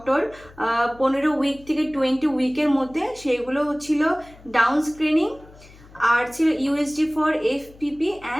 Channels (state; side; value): noise; left; hum, 23 dB below the sound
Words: 15 উইক থেকে 20 উইকের মধ্যে, সেগুলো ছিল ডাউন স্ক্রিনিং আর ছিল USG for FPP